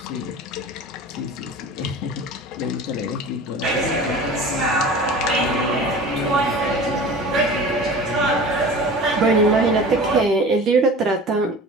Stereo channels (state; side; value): normal; both; correlation 0.38